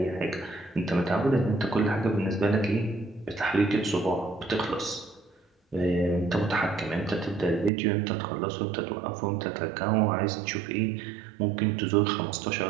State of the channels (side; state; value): left; drops out; at 7.7 s